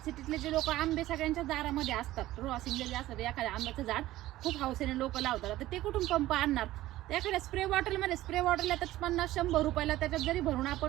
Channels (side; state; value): left; quieter; 15.7 dB